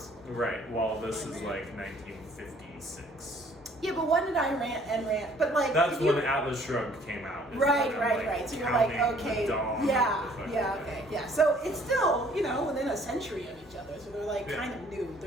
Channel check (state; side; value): normal; both; correlation 0.58